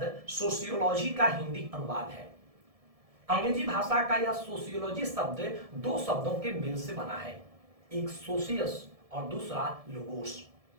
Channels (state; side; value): late; left; 1.7 ms